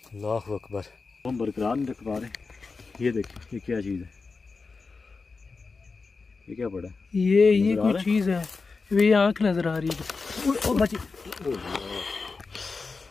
अल्लाह अकबर। हम बरकरार नहीं रख पा रहे। ये देखिए ये क्या चीज़ है? ये क्या पड़ा? ये कोई चीज़ है, ये आँख नजर आ रही है। ओ बची,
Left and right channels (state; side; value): quieter; right; 4.3 dB